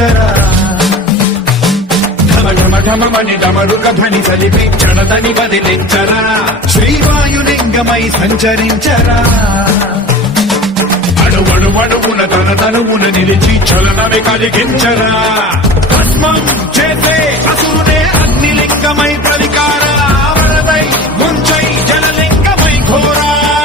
ఢమ ఢమని డమరుక ధ్వని సలిపి చడదని వదిలించరా శ్రీవాయులింగమై సంచరించరా అణువణువున తన తనువున నిలిచి చలనమే కలిగించరా భస్మం చేసే అసురునే అగ్నిలింగమై ప్రలికారా వరదై ముంచై జలలింగమై ఘోరా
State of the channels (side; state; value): both; normal; correlation 0.37